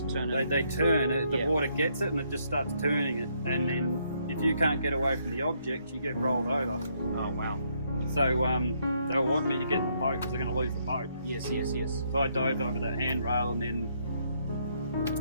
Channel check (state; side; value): inverted; both; correlation -0.72